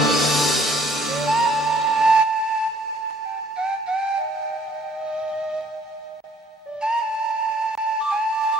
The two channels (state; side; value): normal; both; correlation 0.59